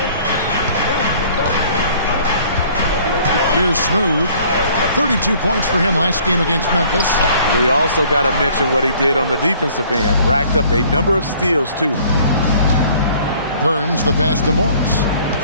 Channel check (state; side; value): inverted; both; correlation -0.56